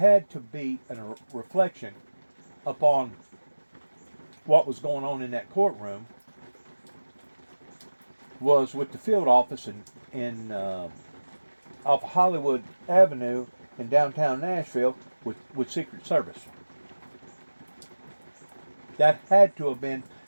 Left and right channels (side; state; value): both; inverted; correlation -1.00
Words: to be a reflection upon what was going on in that courtroom, was with the field office in off Hollywood Avenue in downtown Nashville with Secret Service. That had to have been